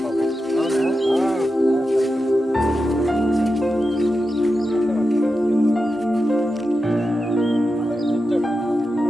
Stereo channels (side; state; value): both; normal; correlation 0.90